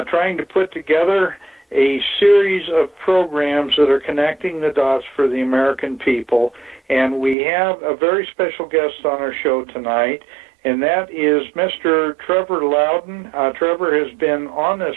trying to put together a series of programs that are connecting the dots for the American people. And we have a very special guest on our show tonight, and that is Mr. Trevor Loudon. Trevor has been on this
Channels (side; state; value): left; drops out; at 7.4 s